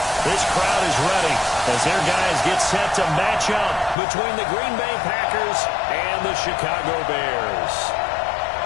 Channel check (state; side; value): drops out; right; at 4.0 s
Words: This crowd is ready as their guys get set to match up between the Green Bay Packers and the Chicago Bears.